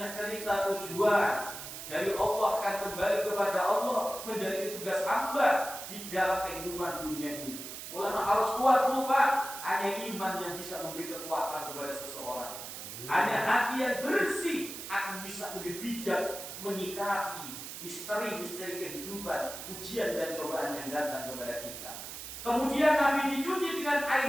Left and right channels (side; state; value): right; noise; hiss, 9 dB below the sound